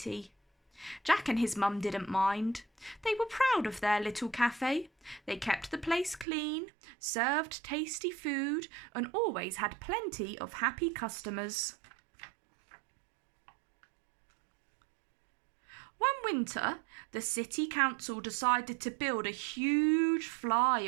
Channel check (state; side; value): drops out; left; at 6.2 s